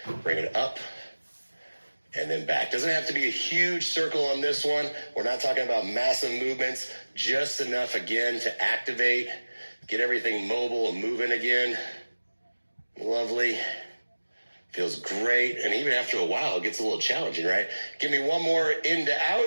bring it up, and then back. Doesn't have to be a huge circle on this one. We're not talking about massive movements. Just enough, again, to activate, get everything mobile and moving again. Lovely. Feels great, and even after a while, it gets a little challenging, right? Give me one more in to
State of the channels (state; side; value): inverted; both; correlation -1.00